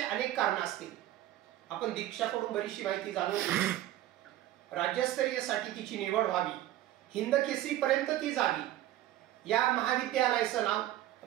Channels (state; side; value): quieter; left; 14.0 dB